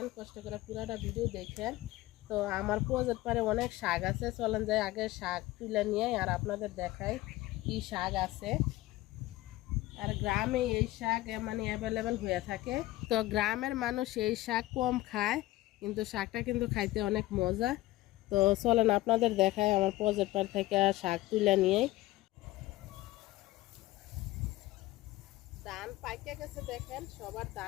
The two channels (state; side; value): quieter; right; 17.5 dB